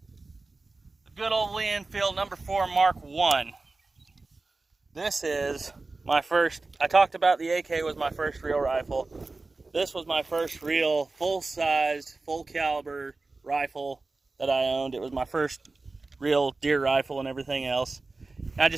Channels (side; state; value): left; quieter; 3.5 dB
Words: The good old Lee Enfield number 4 Mark I. This is my first, I talked about the AK was my first real rifle. This was my first real full-sized, full-caliber rifle that I owned. It was my first real deer rifle and everything else. I